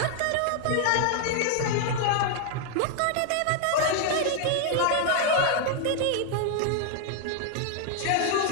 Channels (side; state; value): both; different; correlation 0.00